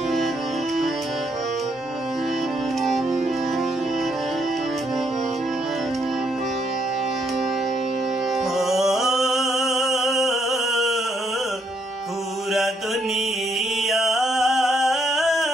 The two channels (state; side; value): normal; both; correlation 0.73